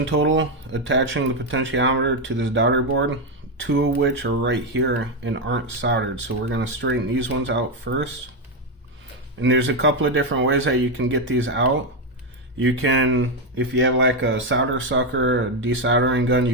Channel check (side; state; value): both; normal; correlation 0.06